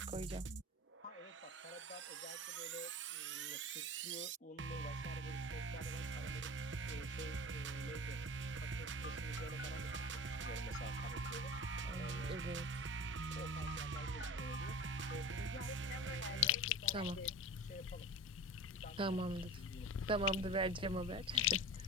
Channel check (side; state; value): both; normal; correlation 0.33